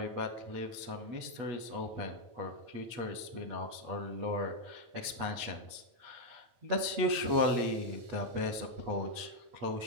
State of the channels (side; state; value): left; late; 8.3 ms